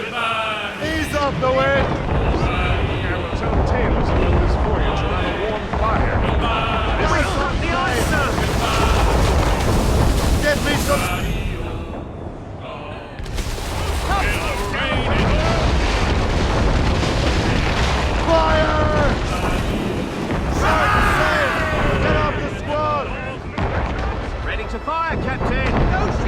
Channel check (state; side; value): identical; both; correlation 1.00